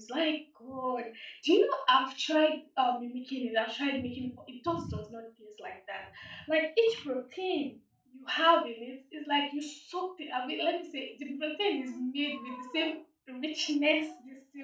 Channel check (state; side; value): identical; both; correlation 1.00